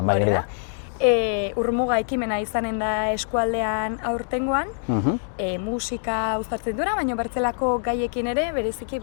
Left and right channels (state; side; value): silent; right; digital silence